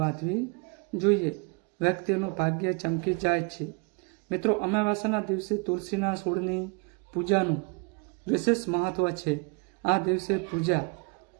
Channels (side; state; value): left; quieter; 31.9 dB